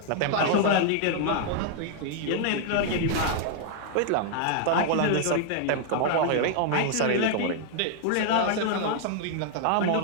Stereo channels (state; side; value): different; both; correlation 0.00